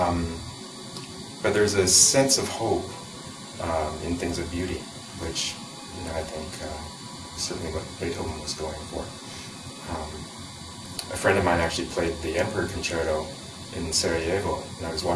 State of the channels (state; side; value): identical; both; correlation 1.00